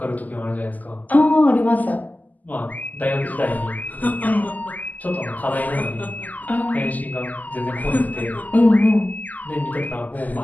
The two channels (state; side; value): late; right; 0.080 ms